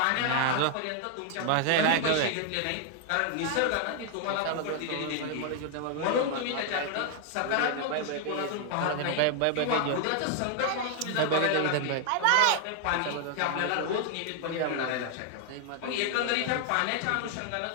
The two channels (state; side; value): different; both; correlation 0.00